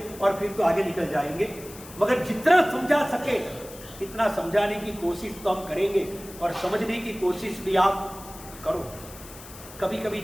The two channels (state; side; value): noise; left; hiss, 17 dB below the sound